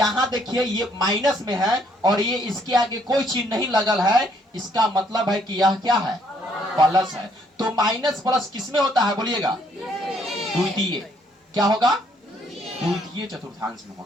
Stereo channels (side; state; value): both; normal; correlation 0.68